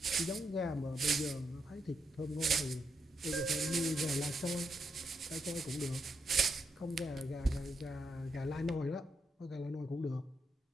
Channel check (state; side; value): normal; both; correlation 0.81